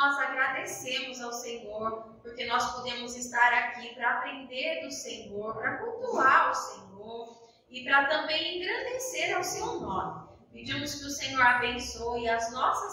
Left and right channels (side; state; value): both; identical; correlation 1.00